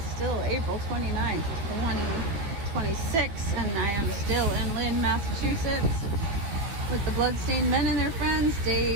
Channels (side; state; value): left; late; 16 ms